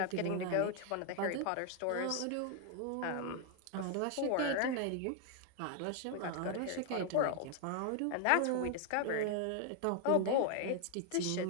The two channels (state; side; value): different; both; correlation 0.00